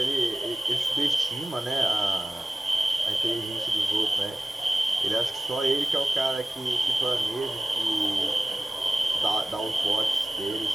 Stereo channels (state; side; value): normal; both; correlation 0.95